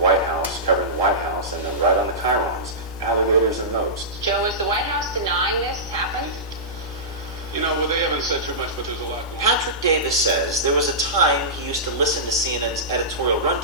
House, covering the White House, and then right on the chyrons, alligators and moats. Joe, is the White House denying this happened? You know, well, they haven't said too much, but there's a lot going on. Patrick Davis says there was a time he used to listen to CNN's editorial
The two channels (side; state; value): both; normal; correlation -0.18